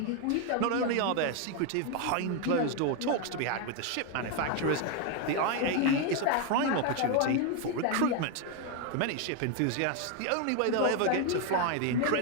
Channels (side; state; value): both; different; correlation 0.01